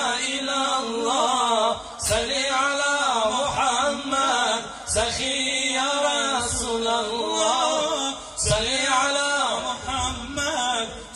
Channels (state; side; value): identical; both; correlation 1.00